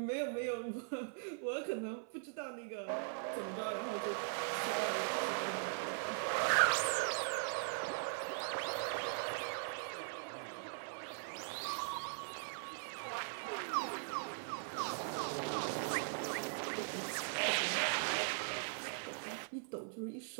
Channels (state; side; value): silent; left; 51 dB below the other